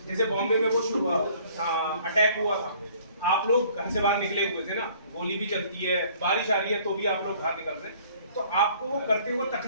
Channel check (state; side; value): inverted; both; correlation -0.56